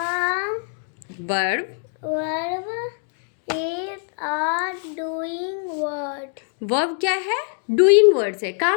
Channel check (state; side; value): silent; right; 57 dB below the other